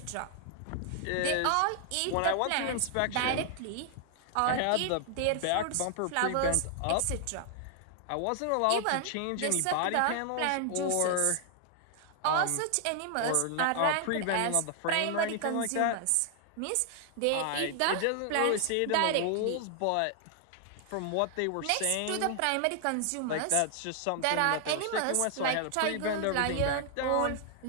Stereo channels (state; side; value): different; both; correlation 0.00